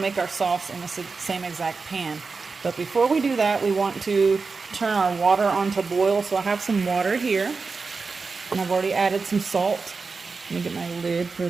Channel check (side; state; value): left; quieter; 4.5 dB